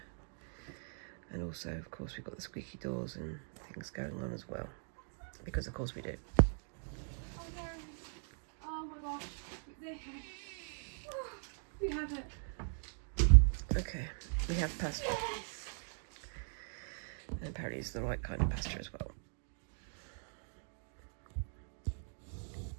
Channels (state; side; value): silent; left; 51 dB below the other